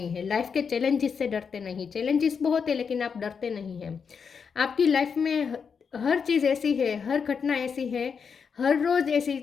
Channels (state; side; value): quieter; right; 6.2 dB